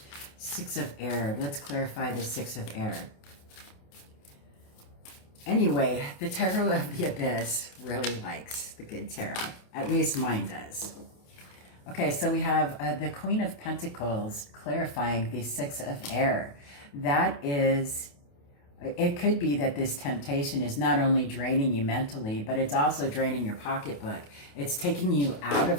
Six of Air. Let's clarify the Six of Air. Anyway, the Tarot of the Abyss really likes the good tarot. At least mine does. Okay, so we have the Queen of Pentacles clarifying the Six of Air. That is, it could be that this temptation is not only draining you mentally, but it's also draining your pocketbook. It's taking you out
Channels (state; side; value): late; right; 28 ms